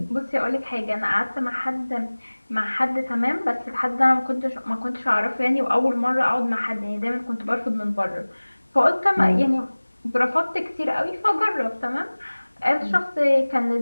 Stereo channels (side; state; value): both; inverted; correlation -1.00